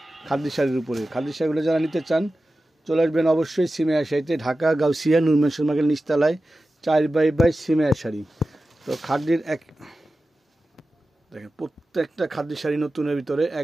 খাদ্যি শাড়ির উপরে। খাদ্যি শাড়িগুলো যারা নিতে চান চলে আসবেন অবশ্যই সিমিয়ার শাড়িতে, ঢাকা গাউসিয়া নূর মেনশন মার্কেট নিচতলায় 4x সিমিয়ার শাড়ি। তো খাদ্যির দেখেন প্রত্যেকটা খাদ্যি শাড়ি নতুনের ভিতরে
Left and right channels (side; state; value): both; normal; correlation 0.94